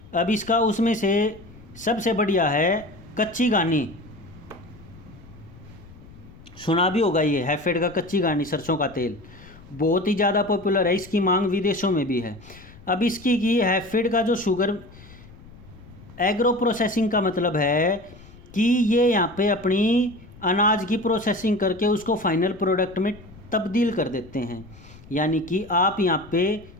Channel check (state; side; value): noise; left; rumble, 21 dB below the sound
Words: अब इसका उसमें से सबसे बढ़िया है कच्ची घानी, सुना भी होगा, ये हैफेड का कच्ची घानी सरसों का तेल बहुत ही ज़्यादा पॉपुलर है, इसकी मांग विदेशों में भी है। अब इसकी की हैफेड का जो शुगर एग्रो प्रोसेसिंग का मतलब है कि ये यहाँ पे अपनी अनाज की प्रोसेसिंग करके उसको फाइनल प्रोडक्ट में तब्दील कर देते हैं। यानी कि आप यहाँ पे